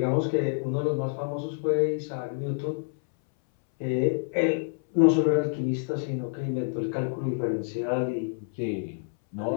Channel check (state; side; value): silent; right; 60 dB below the other